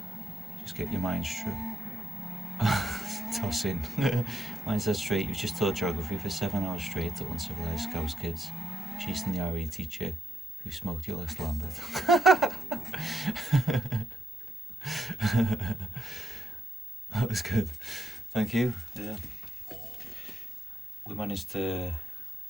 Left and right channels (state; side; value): normal; both; correlation 0.82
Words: Just get your mind straight. Toss in. Mine says straight. You've just taught geography for 7 hours straight to uncivilized Scouse kids, chasing the RE teacher who smoked your last Lambert. That was good. Thank you. Yeah. We managed to.